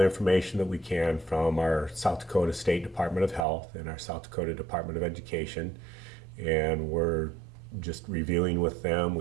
information that we can from our South Dakota State Department of Health and our South Dakota Department of Education, and we're just reviewing with them.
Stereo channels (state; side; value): drops out; left; at 3.5 s